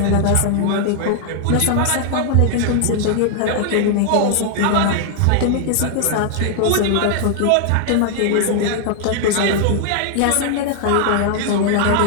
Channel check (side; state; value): both; different; correlation 0.00